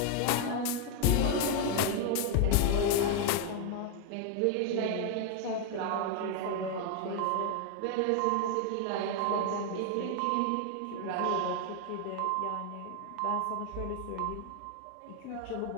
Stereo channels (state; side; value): different; both; correlation 0.01